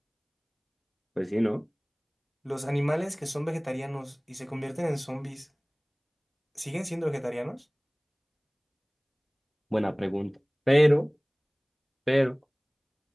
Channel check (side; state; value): both; identical; correlation 1.00